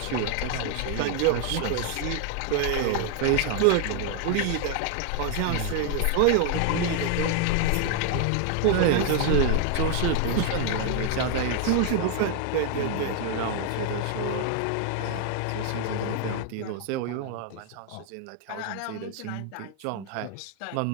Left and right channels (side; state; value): both; different; correlation 0.00